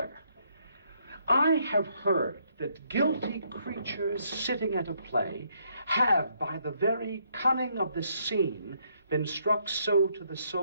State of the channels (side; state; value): both; inverted; correlation -0.72